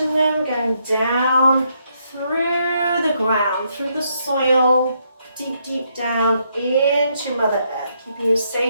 them going down through the ground, through the soil, deep, deep down into Mother Earth, keeping you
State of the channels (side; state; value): both; inverted; correlation -0.75